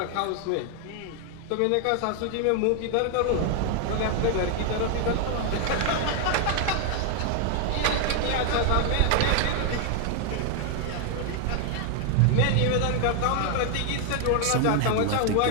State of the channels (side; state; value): both; different; correlation 0.00